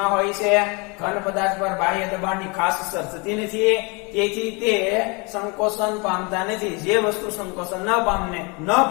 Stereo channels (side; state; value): right; quieter; 30.1 dB